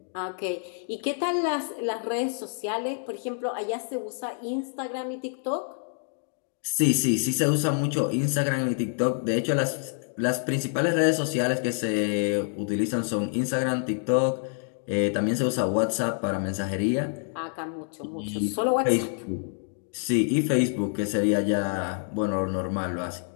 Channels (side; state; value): right; silent; 60 dB below the other